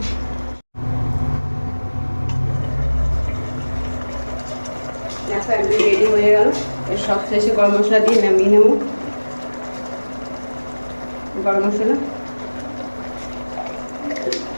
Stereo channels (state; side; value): inverted; both; correlation -1.00